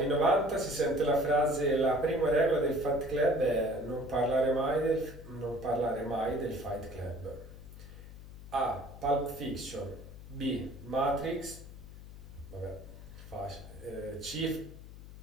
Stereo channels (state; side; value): noise; left; hum, 15 dB below the sound